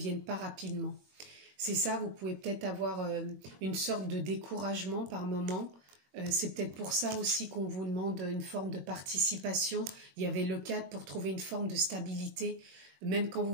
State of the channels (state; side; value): late; left; 22 ms